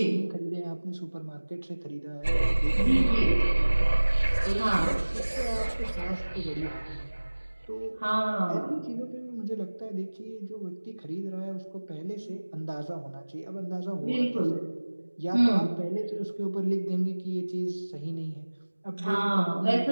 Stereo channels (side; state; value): both; inverted; correlation -1.00